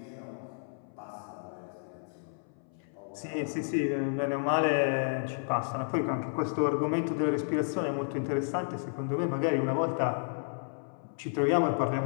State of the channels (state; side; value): silent; right; 57 dB below the other